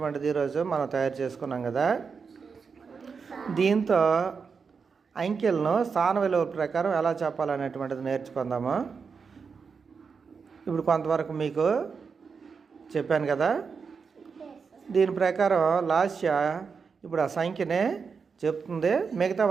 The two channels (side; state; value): left; quieter; 5.5 dB